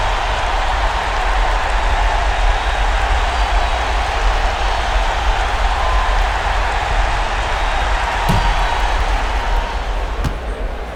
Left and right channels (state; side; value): identical; both; correlation 1.00